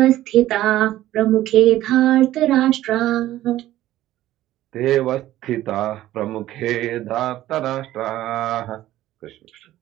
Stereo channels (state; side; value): quieter; left; 14.4 dB